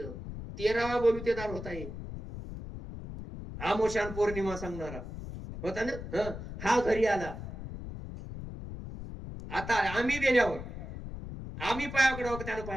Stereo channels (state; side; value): noise; left; rumble, 9 dB below the sound